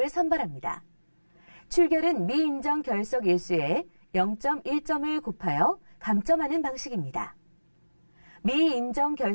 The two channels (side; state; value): both; inverted; correlation -1.00